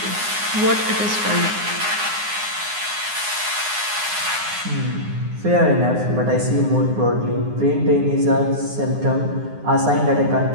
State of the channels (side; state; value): left; late; 9.7 ms